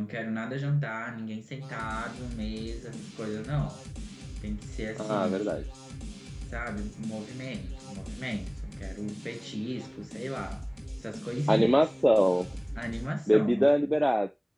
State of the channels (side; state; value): both; identical; correlation 1.00